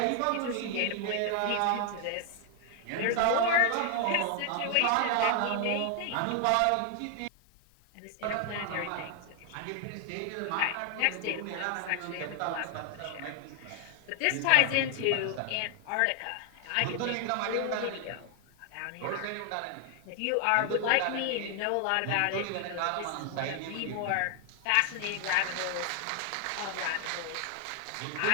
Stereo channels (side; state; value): both; different; correlation 0.00